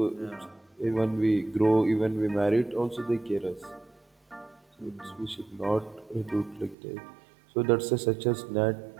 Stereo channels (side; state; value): left; drops out; at 6.8 s